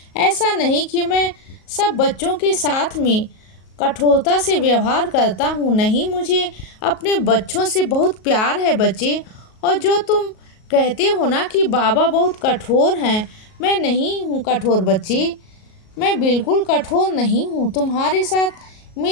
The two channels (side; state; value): right; late; 37 ms